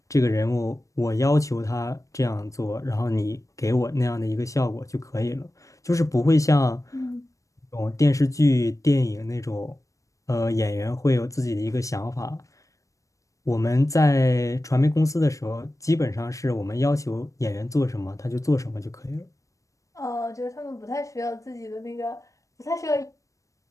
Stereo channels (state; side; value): late; right; 0.16 ms